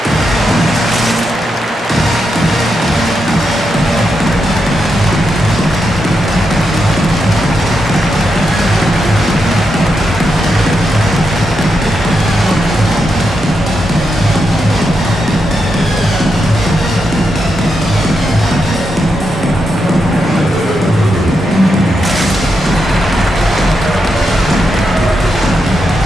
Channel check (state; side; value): normal; both; correlation 0.84